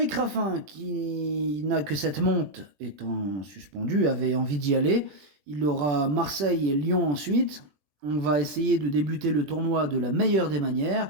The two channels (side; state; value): left; late; 21 ms